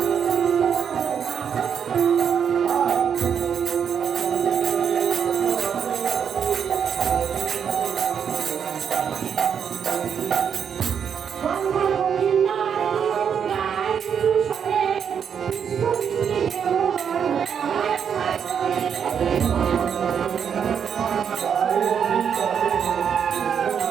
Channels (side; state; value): left; quieter; 7.6 dB